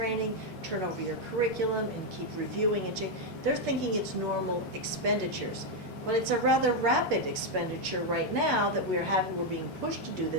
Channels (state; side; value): normal; both; correlation 0.02